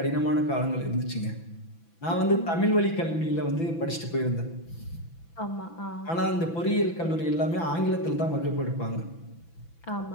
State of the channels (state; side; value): late; right; 6.0 ms